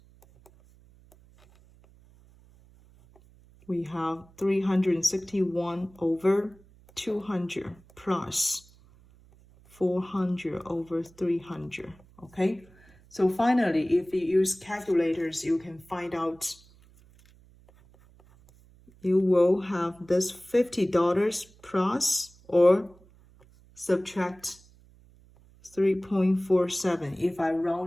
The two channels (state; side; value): noise; right; hum, 27 dB below the sound